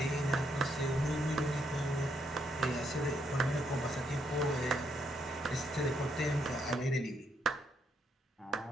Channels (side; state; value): both; normal; correlation 0.76